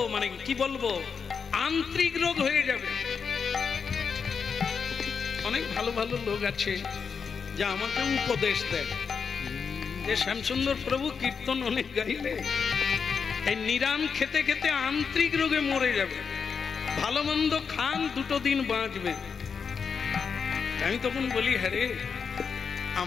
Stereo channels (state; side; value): quieter; right; 6.0 dB